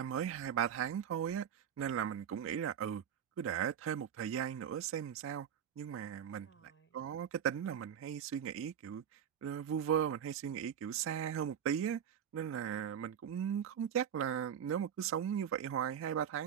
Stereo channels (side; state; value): left; quieter; 8.7 dB